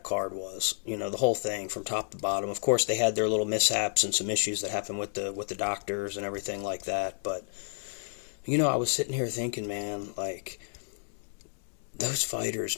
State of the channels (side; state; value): right; silent; digital silence